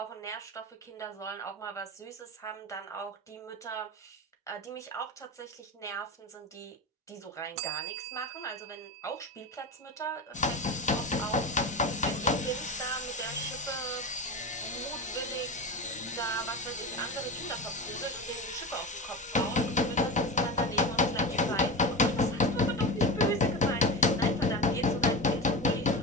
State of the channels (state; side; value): normal; both; correlation 0.24